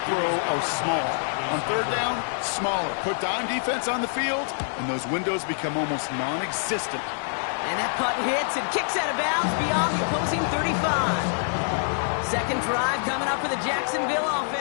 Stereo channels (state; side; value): silent; right; digital silence